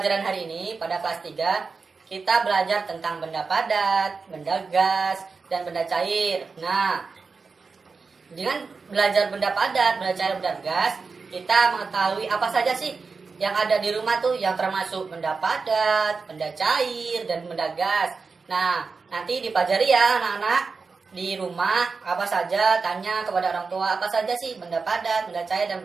hari ini, pada kelas 3, kita belajar tentang benda padat, benda gas, dan benda cair. Nah, dengan belajar benda padat, benda cair, benda gas, kita mengetahui apa saja sih yang ada di rumah tuh yang termasuk benda padat, benda cair, dan benda gas. Nah, nanti dipelajari ya anak-anak di rumah, apa saja, tanya kepada orang tua apa saja sih benda padat, benda cair, dan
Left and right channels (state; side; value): quieter; left; 4.6 dB